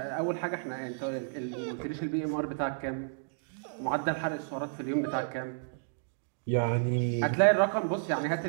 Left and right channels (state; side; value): silent; left; digital silence